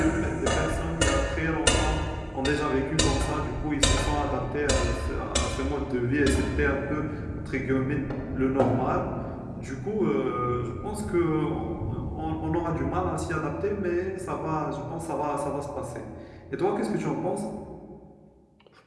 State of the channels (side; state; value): both; identical; correlation 1.00